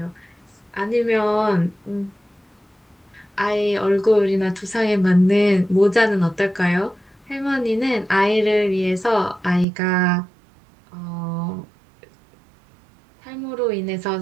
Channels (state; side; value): drops out; left; at 9.7 s